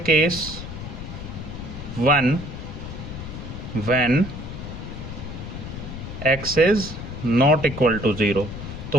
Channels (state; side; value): noise; left; rumble, 9 dB below the sound